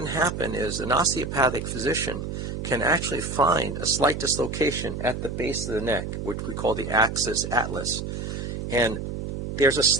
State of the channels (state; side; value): noise; right; hum, 5 dB below the sound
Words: happen is an osteopathic physician can actually find a slight dislocation at the base of the neck, which we call the axis atlas, and there's a